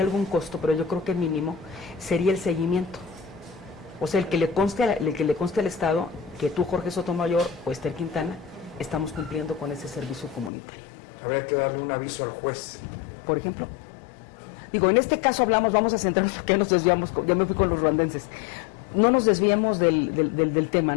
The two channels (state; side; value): drops out; right; at 10.5 s